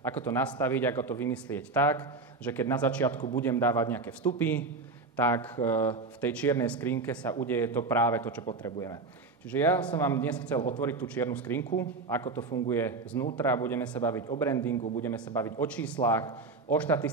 to nastaviť, ako to vymyslieť tak, že keď na začiatku budem dávať nejaké vstupy, tak v tej čiernej skrinke sa udeje to práve to, čo potrebujeme. Čiže ja som vám dnes chcel otvoriť tú čiernu skrinku, ako to funguje znútra, budeme sa baviť o brandingu, budeme sa baviť o číslach, o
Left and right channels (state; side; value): quieter; left; 3.9 dB